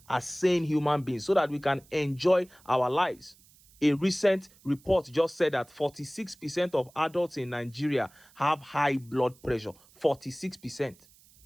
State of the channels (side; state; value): right; noise; hiss, 28 dB below the sound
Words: as sane human beings, so that we can enjoy our lives. A recent report just said that 46% of adults in Nigeria have high blood pressure. 46%.